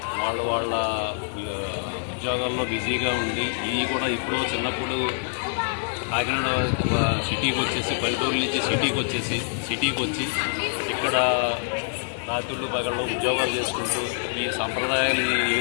వాళ్ళ ఉద్యోగాల్లో బిజీగా ఉండి ఇవి కూడా ఇప్పుడు చిన్నప్పుడు కాకినాడ సిటీకి వచ్చేసి పల్లెటూరు నుంచి సిటీకి వచ్చి ఇక్కడ రాత్రులు పగళ్ళు ఉద్యోగాలు చేసుకుంటూ ఈ సంప్రదాయాలు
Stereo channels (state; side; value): silent; right; digital silence